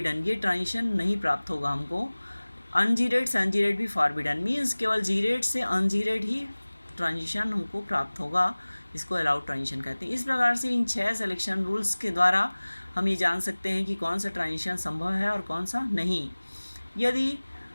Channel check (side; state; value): both; inverted; correlation -1.00